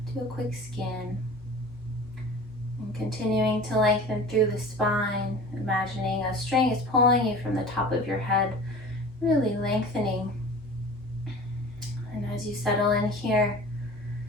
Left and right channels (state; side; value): normal; both; correlation 0.39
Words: Do a quick scan. And continuing to lengthen through the spine, imagining a string is pulling you from the top of your head, really lengthening. And as you settle in here,